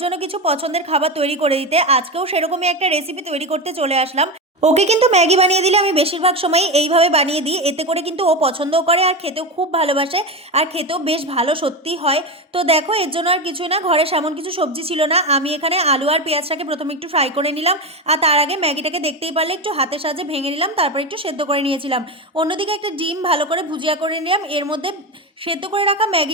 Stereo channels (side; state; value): both; normal; correlation 0.18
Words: জন্য কিছু পছন্দের খাবার তৈরি করে দিতে। আজকেও সেরকমই একটা রেসিপি তৈরি করতে চলে আসলাম। ওকে কিন্তু ম্যাগি বানিয়ে দিলে আমি বেশিরভাগ সময় এইভাবে বানিয়ে দিই, এতে করে কিন্তু ও পছন্দও করে আর খেতেও খুব ভালোবাসে, আর খেতেও বেশ ভালো সত্যি হয়। তো দেখো, এর জন্য আর কিছুই না, ঘরে সেমন কিছু সবজি ছিল না। আমি এখানে আলু আর পেঁয়াজটাকে প্রথমে একটু ফ্রাই করে নিলাম, আর তার আগে ম্যাগিটাকে দেখতেই পারলে একটু হাতের সাহায্যে ভেঙে নিলাম, তারপর একটু সেদ্ধ করে নিয়েছিলাম। অন্যদিকে একটা ডিম ভালো করে ভুজিয়া করে নিলাম, এর মধ্যে সেদ্ধ করে রাখা